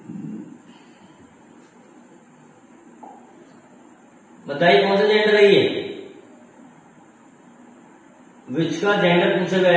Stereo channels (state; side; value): identical; both; correlation 1.00